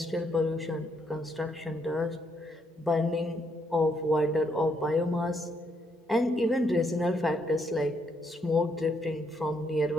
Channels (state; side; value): normal; both; correlation 0.74